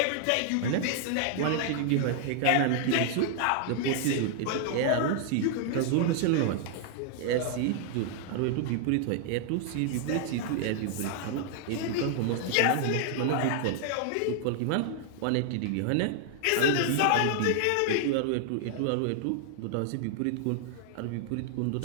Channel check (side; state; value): both; different; correlation 0.00